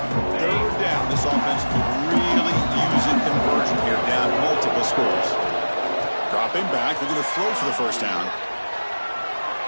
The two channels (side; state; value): both; inverted; correlation -1.00